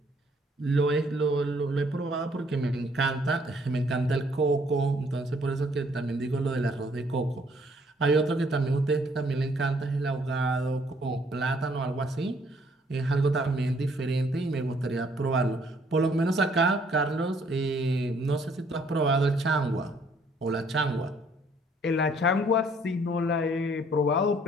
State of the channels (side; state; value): both; normal; correlation 0.64